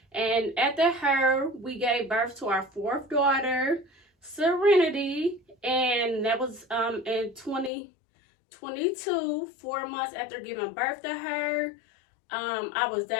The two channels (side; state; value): right; drops out; at 7.7 s